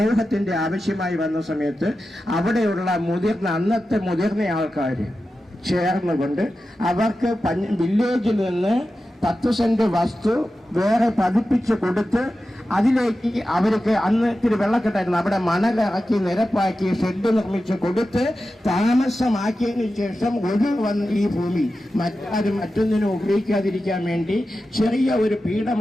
ആവശ്യമായി വന്ന സമയത്ത് അവിടെയുള്ള അന്നത്തെ മുതിർന്ന ആൾക്കാർ ചേർന്നുകൊണ്ട് അവർക്ക് വില്ലേജിൽ നിന്ന് 10 സെന്റ് വസ്തു വേറെ പതിപ്പിച്ച് കൊടുത്ത് അതിലേക്ക് അവർക്ക് അന്ന് ഇത്തിരി വെള്ളക്കെട്ടായിരുന്നു, അവിടെ മണലിറക്കി നിരപ്പാക്കി ഷെഡ് നിർമ്മിച്ച് കൊടുത്ത് താമസമാക്കിയതിനു ശേഷം ഈ ഭൂമി മറ്റൊന്നിനും ഉപയോഗിക്കാതിരിക്കാൻ വേണ്ടി ചെറിയ ഒരു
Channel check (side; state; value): both; normal; correlation 0.92